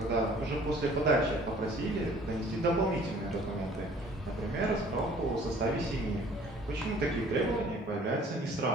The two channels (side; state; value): both; normal; correlation 0.53